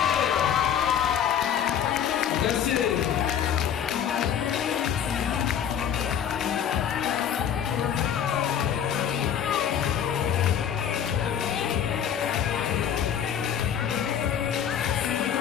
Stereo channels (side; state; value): right; quieter; 8.9 dB